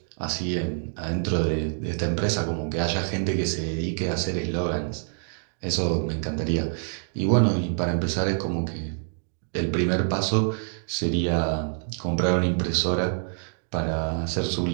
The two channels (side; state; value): left; silent; 61 dB below the other